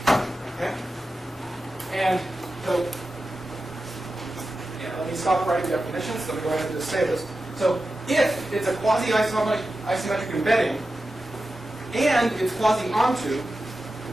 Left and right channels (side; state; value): both; normal; correlation 0.92